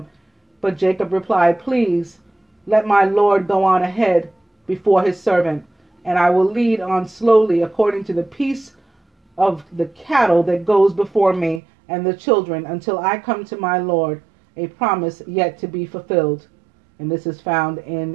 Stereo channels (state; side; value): drops out; left; at 11.6 s